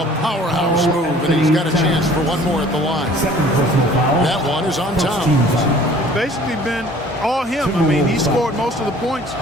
powerhouse move, and he's got a chance for one more at the line. That one is on Towns. Basically been all him. I mean, he scored most of the points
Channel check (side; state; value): both; normal; correlation 0.51